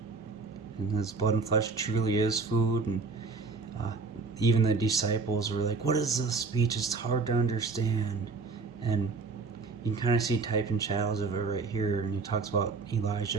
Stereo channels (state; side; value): quieter; left; 4.4 dB